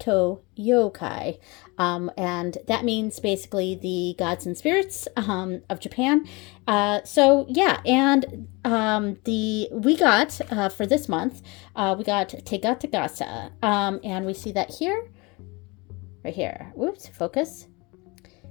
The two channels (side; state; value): right; quieter; 26.3 dB